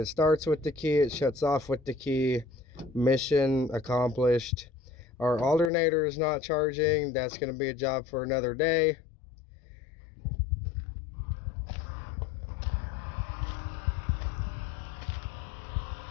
starts with the key, it shuts off with the key. Mission accomplished. Our alternator is not charging. That's going to be a job for another day.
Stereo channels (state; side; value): drops out; right; at 5.7 s